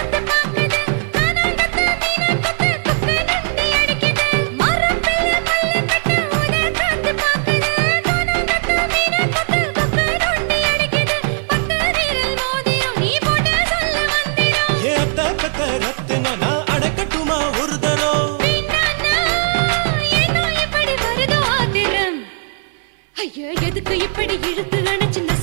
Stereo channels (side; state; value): left; silent; 59 dB below the other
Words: பாக்குது, கானாங்கத்து மீனாக்கத்து குக்கு நொண்டி அடிக்குது. மரத்துல மல்லி கட்டு உதர் காத்து பாக்குது, கானாங்கத்து மீனாக்கத்து குக்கு நொண்டி அடிக்குது. பத்து வீரல் மோதிரம் நீ போட்டு சொல்ல வந்திரும். ஏ அத்த கத்த ரத்தின நான் அடக்கட்டுமா ஒரு தரம். வீணானா, ஏனோ இப்படி வருதோ ஆத்திரம். ஐயோ, எதுக்கு இப்படி இழுத்து அணைச்சு